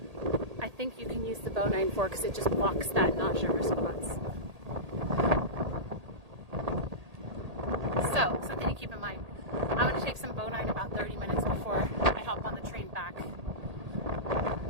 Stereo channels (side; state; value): left; late; 1.8 ms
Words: I think you can use the Bone-9 for because it just blocks that nausea response. So something to keep in mind. I'm going to take some Bone-9 about 30 minutes before I hop on the train back to